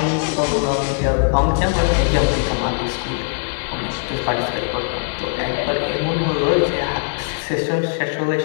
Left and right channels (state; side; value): silent; right; digital silence